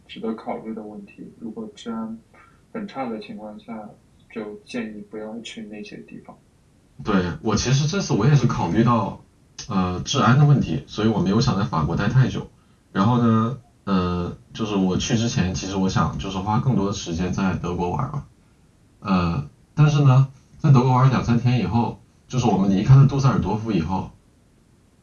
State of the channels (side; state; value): both; identical; correlation 1.00